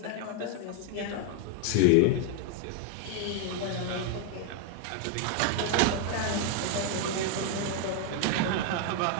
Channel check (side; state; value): both; different; correlation 0.01